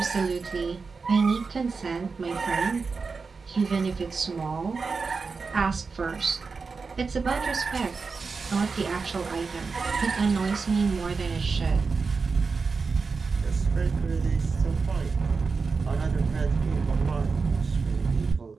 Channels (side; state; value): left; quieter; 4.7 dB